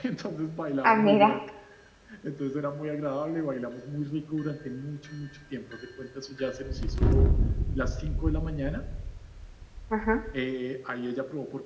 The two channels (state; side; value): identical; both; correlation 1.00